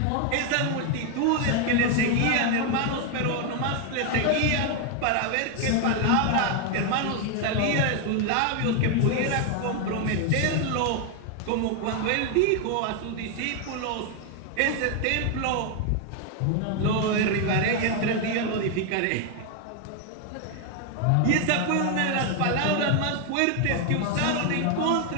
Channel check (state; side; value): different; both; correlation 0.01